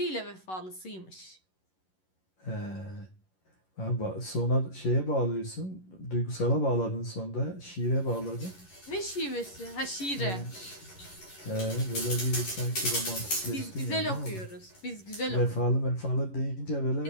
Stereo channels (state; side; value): late; right; 11 ms